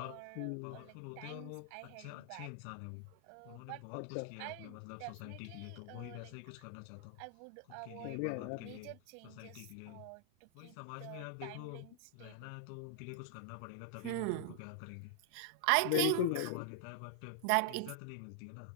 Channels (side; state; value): both; different; correlation -0.01